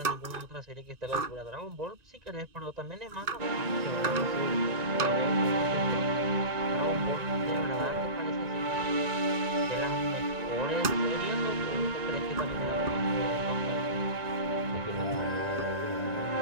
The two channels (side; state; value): left; late; 1.9 ms